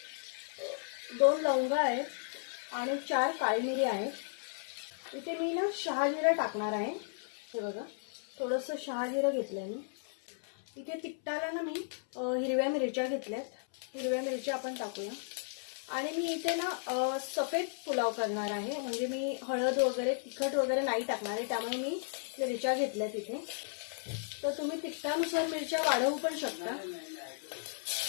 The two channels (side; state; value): right; silent; 55 dB below the other